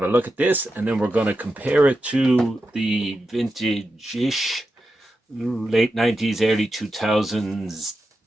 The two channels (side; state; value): both; normal; correlation 0.89